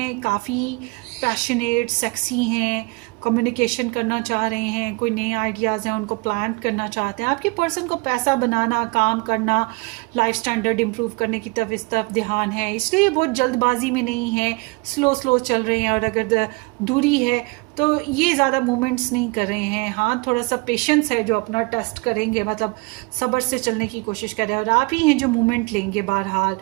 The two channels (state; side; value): quieter; left; 28.3 dB